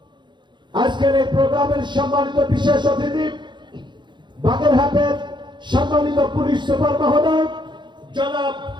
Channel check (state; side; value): late; left; 0.22 ms